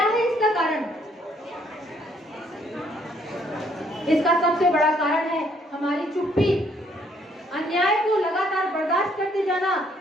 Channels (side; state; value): both; normal; correlation 0.67